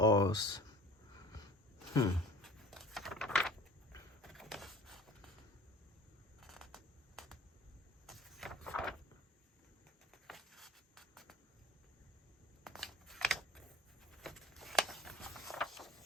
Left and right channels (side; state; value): both; normal; correlation 0.43